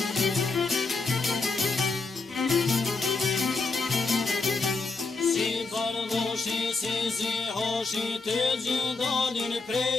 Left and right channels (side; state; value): right; quieter; 4.0 dB